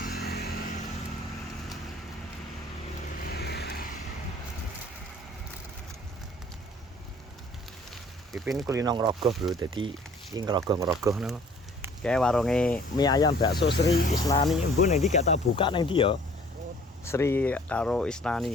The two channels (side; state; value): both; normal; correlation 0.54